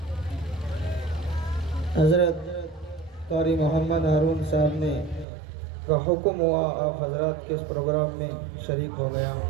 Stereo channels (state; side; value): drops out; left; at 5.2 s